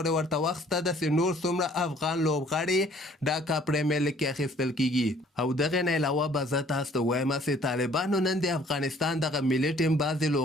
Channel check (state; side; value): normal; both; correlation 0.57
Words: ورته وخت شته ده چې نور څومره افغان لوبغاړي ډاکا پریمیر لیګ کې اخیستل کېږي. او دغې نه علاوه به زه تاسو ته ووایم چې طالبانو نن د افغانستان دغه ملي ټیم بعضې